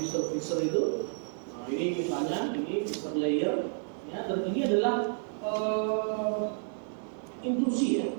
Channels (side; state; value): left; silent; 57 dB below the other